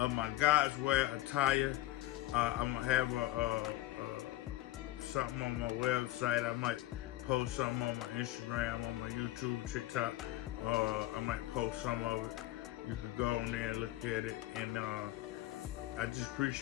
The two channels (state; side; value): quieter; right; 16.1 dB